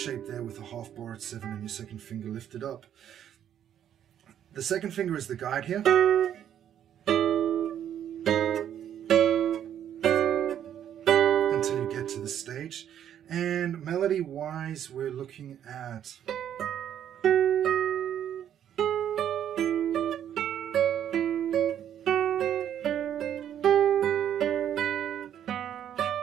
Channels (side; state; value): left; quieter; 10.0 dB